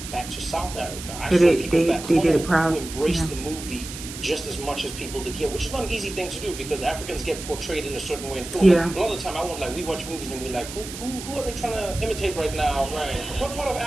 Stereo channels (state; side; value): noise; right; hiss, 11 dB below the sound